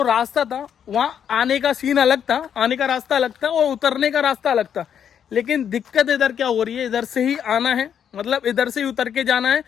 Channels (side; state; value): right; quieter; 8.5 dB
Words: रास्ता था वहाँ आने का सीन अलग था, आने का रास्ता अलग था और उतरने का रास्ता अलग था। लेकिन दिक्कत इधर क्या हो रही है, इधर से ही आना है, मतलब इधर से ही उतर के जाना है